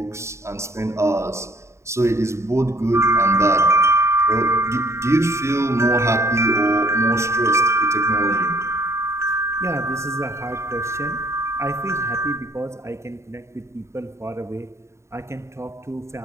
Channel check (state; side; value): late; left; 0.14 ms